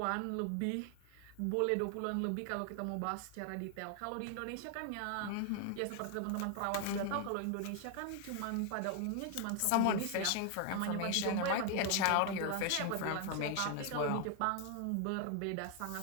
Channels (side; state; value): both; different; correlation 0.00